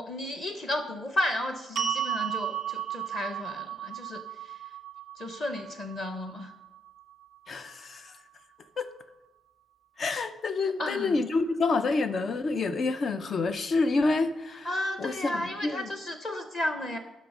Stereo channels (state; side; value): normal; both; correlation 0.80